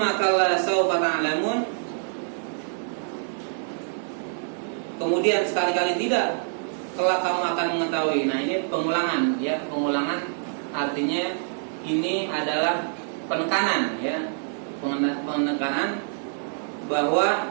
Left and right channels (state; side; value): silent; left; digital silence